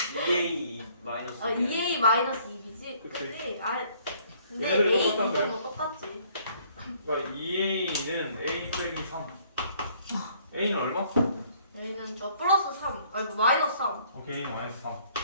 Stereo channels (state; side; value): inverted; both; correlation -0.61